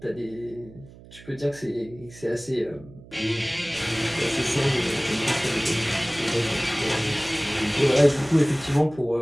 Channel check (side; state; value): right; noise; hum, 20 dB below the sound